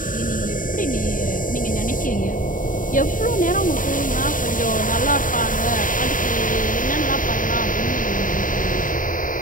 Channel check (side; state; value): right; late; 0.39 ms